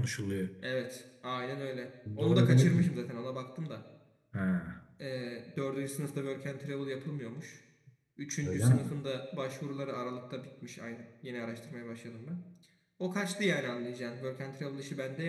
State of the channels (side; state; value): both; identical; correlation 1.00